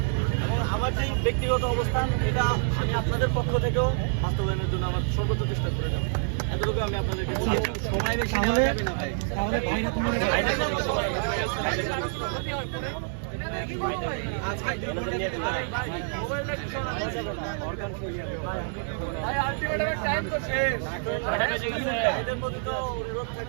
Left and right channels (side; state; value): left; silent; digital silence